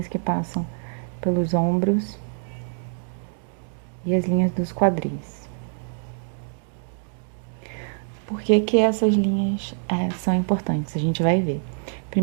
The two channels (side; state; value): left; silent; 62 dB below the other